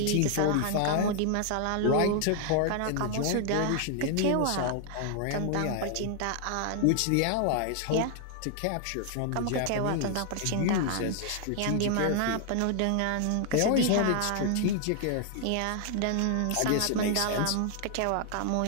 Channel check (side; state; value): both; different; correlation 0.00